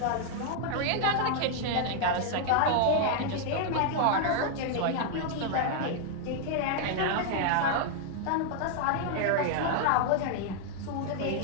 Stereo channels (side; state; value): both; different; correlation 0.00